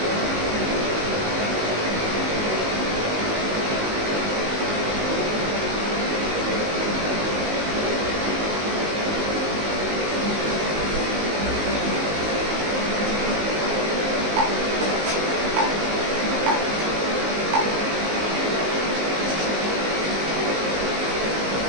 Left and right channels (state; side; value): late; left; 19 ms